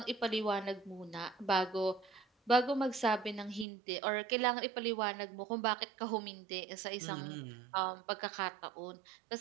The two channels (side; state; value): left; drops out; at 3.7 s